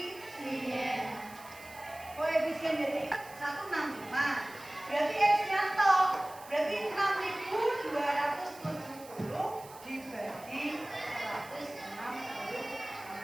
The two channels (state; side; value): noise; right; hiss, 19 dB below the sound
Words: Koefisien jadi 165. Berarti X-nya toh, berarti 6.270 dibagi 160.